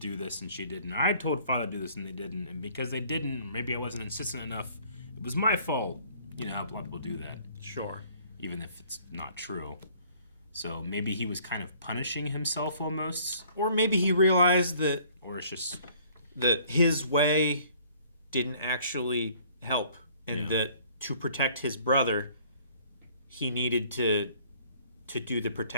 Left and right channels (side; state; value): both; inverted; correlation -0.57